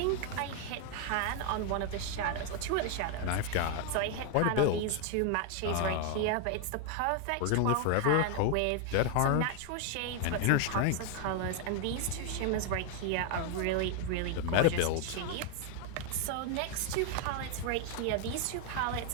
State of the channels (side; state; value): both; different; correlation 0.00